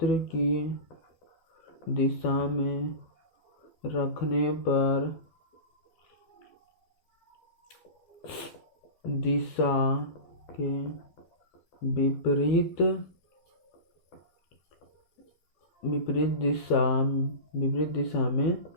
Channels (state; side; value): late; right; 12 ms